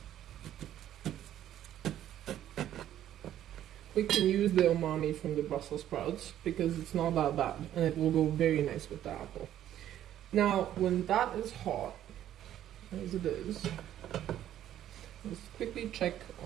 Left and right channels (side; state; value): left; quieter; 11.7 dB